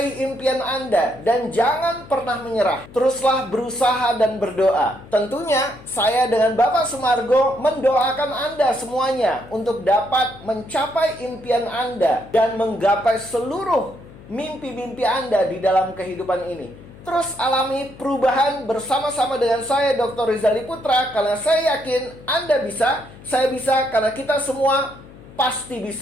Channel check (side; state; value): left; noise; hum, 20 dB below the sound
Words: impian Anda dan jangan pernah menyerah. Teruslah berusaha dan berdoa. Tentunya saya dengan Bapak Sumargo mendoakan Anda semuanya untuk dapat mencapai impian Anda dan menggapai seluruh mimpi-mimpi Anda di dalam kehidupan ini. Terus alami perubahan bersama-sama dengan saya, Dr. Rizali Putra, karena saya yakin Anda bisa, saya bisa, karena kita semua pasti